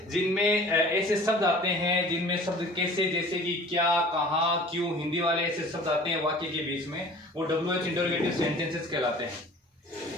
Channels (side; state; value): both; normal; correlation 0.46